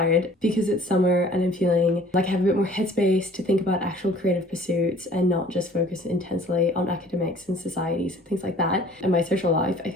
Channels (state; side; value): normal; both; correlation 0.52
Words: because it's summer and I'm feeling like I have a bit more headspace to think about actual creative pursuits and not just focus intensely on academics and societies and things like that. And my social life, I